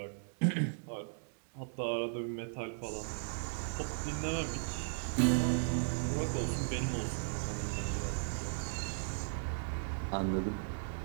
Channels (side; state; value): left; silent; digital silence